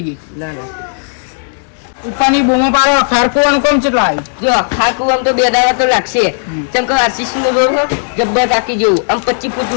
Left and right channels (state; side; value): silent; right; digital silence